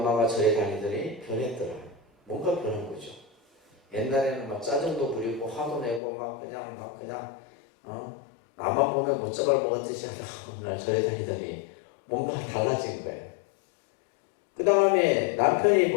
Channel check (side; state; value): right; drops out; at 6.0 s